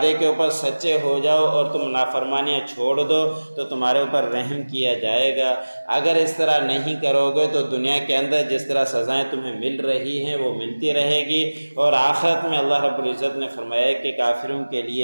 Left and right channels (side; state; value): both; inverted; correlation -1.00